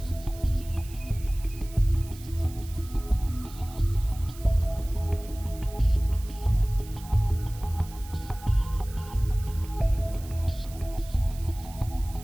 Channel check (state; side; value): noise; right; hiss, 19 dB below the sound